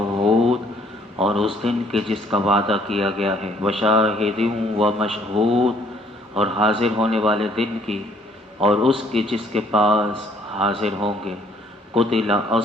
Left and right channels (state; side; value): normal; both; correlation 0.62